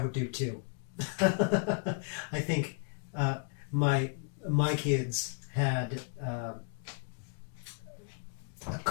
do too. I think my kids had a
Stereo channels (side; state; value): right; silent; 55 dB below the other